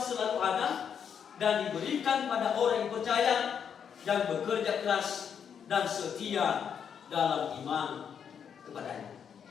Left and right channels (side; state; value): right; quieter; 7.6 dB